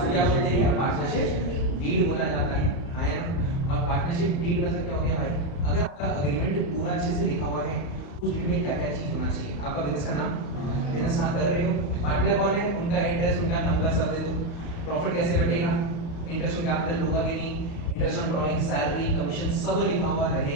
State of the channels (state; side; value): late; right; 33 ms